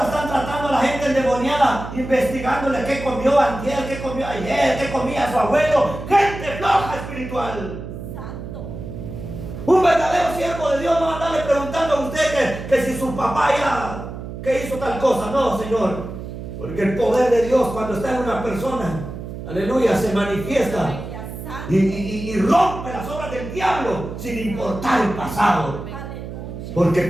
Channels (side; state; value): right; noise; hum, 9 dB below the sound